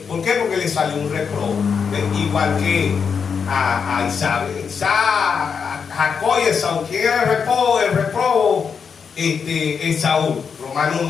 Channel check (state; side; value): quieter; right; 6.3 dB